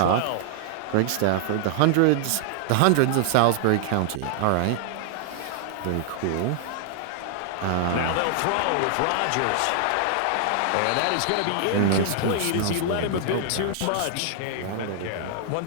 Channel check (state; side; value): different; both; correlation -0.01